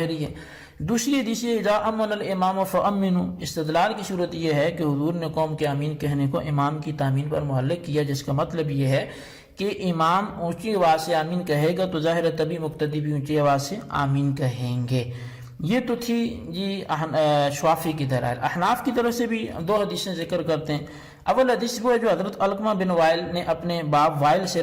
ہے۔ دوسری حدیث اذا امن الامام فامنوا، استدلال کی صورت یہ ہے کہ حضور نے قوم کے آمین کہنے کو امام کی تامین پر معلق کیا، جس کا مطلب یہ ہے کہ امام اونچی آواز سے آمین کہے گا تو ظاہر ہے تبھی مقتدی بھی اونچی آواز سے آمین کہیں گے۔ یہ تو تھی جی شافعی کی دلائل۔ احناف کی طرف سے بھی دو حدیثیں ذکر کرتے ہیں۔ اول حدیث وہ ہے جو حضرت علقمہ بن وائل نے اپنے باپ وائل سے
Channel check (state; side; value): identical; both; correlation 1.00